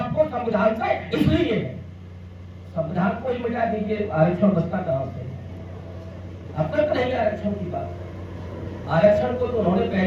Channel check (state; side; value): identical; both; correlation 1.00